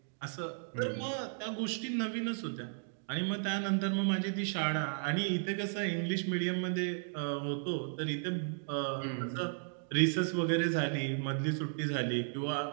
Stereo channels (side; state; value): left; silent; digital silence